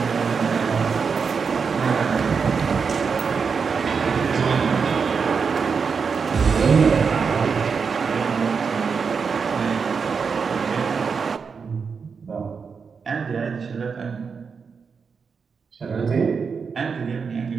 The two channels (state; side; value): quieter; left; 5.6 dB